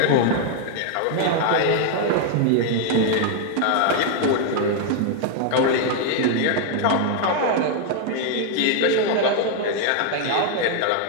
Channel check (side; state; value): both; different; correlation 0.00